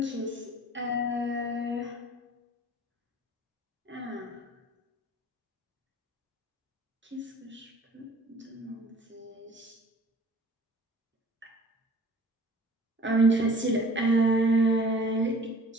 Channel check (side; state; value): both; normal; correlation 0.48